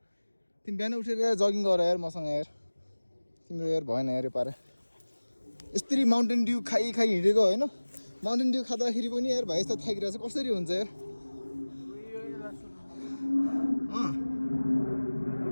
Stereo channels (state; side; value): inverted; both; correlation -1.00